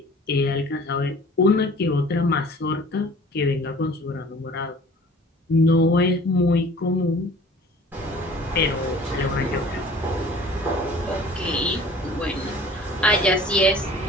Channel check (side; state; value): both; normal; correlation 0.48